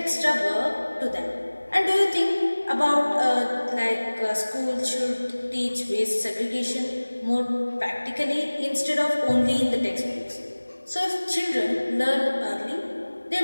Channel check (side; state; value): both; inverted; correlation -1.00